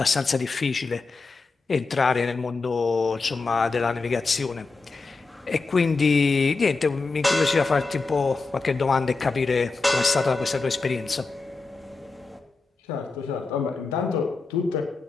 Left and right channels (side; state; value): right; quieter; 4.0 dB